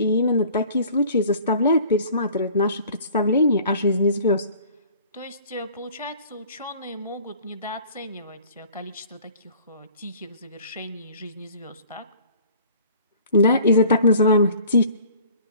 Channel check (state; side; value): inverted; both; correlation -0.50